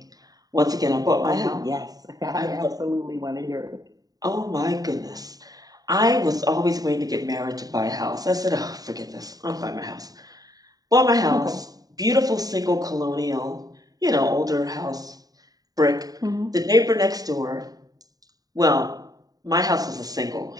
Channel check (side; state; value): left; late; 0.18 ms